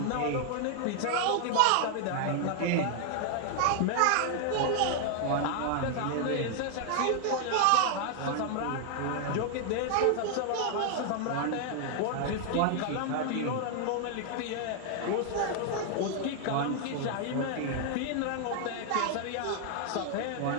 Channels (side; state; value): both; different; correlation 0.00